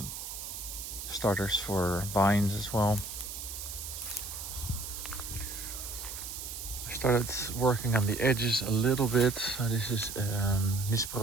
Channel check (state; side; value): noise; right; hiss, 8 dB below the sound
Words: starters for vines as well. I started working on the edges a little bit. So this is